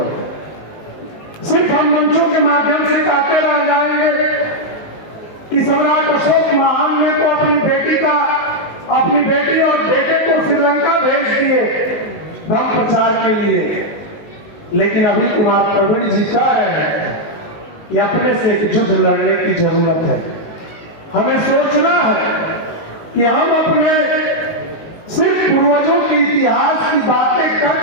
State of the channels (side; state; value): right; late; 19 ms